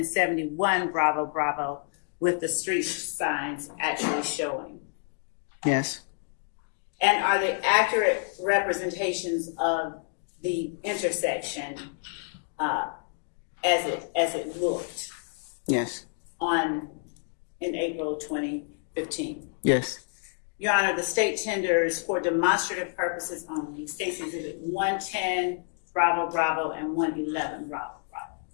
71 Bravo Bravo with the street signs actually showing? Yes. And are they accurate representations of the intersection as it looked Yes. in April 2015? Yes. Your Honor, the state tenders for demonstrative purposes only State's Exhibit 110 Bravo Bravo and 111 Bravo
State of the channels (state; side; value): silent; right; 59 dB below the other